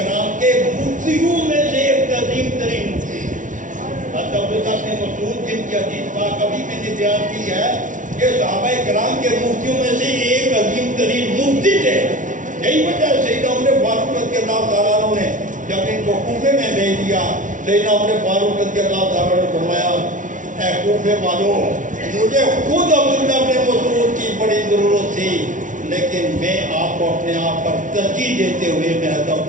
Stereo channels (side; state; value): left; late; 0.37 ms